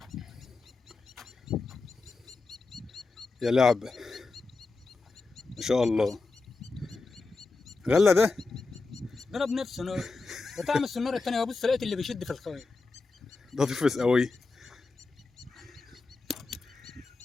يا لعبه. ما شاء الله. غله ده. ضرب نفسه نور. وطعم السناره الثانيه، وبص لقيت اللي بيشد في الخيط. ده تفرس قوي.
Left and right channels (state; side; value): quieter; right; 3.8 dB